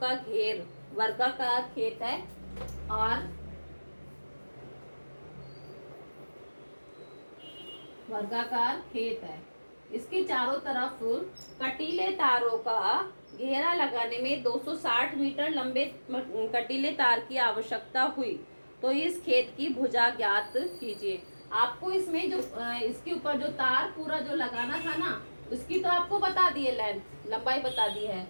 घेर, वर्गाकार खेत है और वर्गाकार खेत है, इसके चारों तरफ कटीले तारों का घेरा लगाने में 260 मीटर लंबे कटीले तार की आवश्यकता हुई, तो इस खेत की भुजा ज्ञात कीजिए। आपको इसमें जो इसके ऊपर जो तार पूरा जो लगाना था ना, उसकी तो आपको बता दी है, लेंथ लंबाई बता दी है।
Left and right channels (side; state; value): both; inverted; correlation -1.00